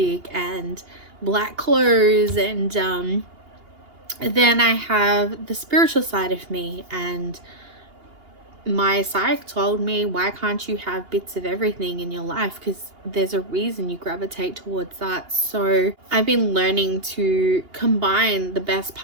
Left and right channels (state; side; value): late; left; 2.8 ms